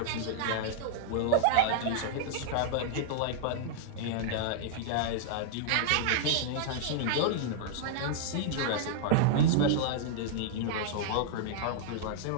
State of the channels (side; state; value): both; different; correlation -0.01